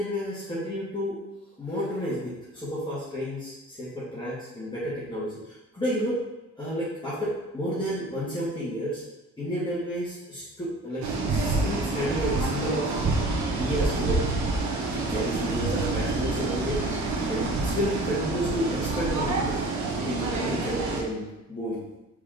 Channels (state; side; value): normal; both; correlation 0.44